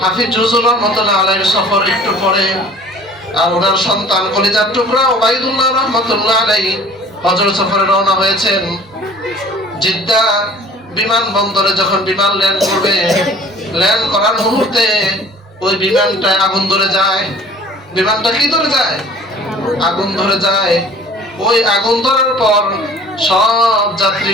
হাফিজ হুজুর রাহমাতুল্লাহ আলাইহির সফর একটু পরে, আর ওনার সন্তান কলিজার টুকরা ওবাইদুল্লাহ রাহমাতুল্লাহ আলাইহি হজের সফরে রওনা হয়েছেন। জিদ্দা বিমানবন্দরে যখন বিমান ল্যান্ড করবে, ল্যান্ড করার মুহূর্তে ওই বিমানটায় আগুন ধরে যায়। বিমানটা কি ধরে যায়? আগুন ধরে যায়। ওই আগুন ধরার পর সব যাত্রী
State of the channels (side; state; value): both; normal; correlation 0.48